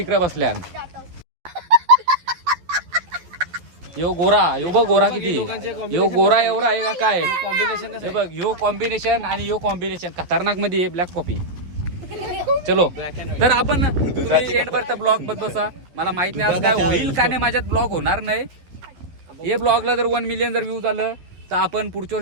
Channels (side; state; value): left; late; 11 ms